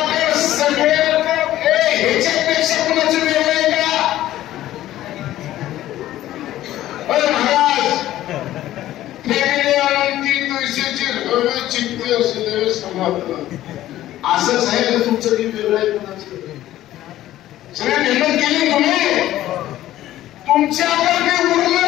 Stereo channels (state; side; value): quieter; right; 14.0 dB